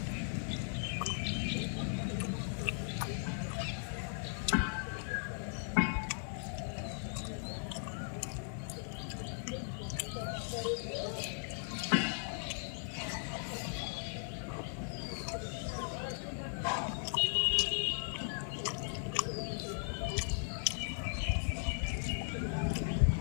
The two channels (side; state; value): right; silent; digital silence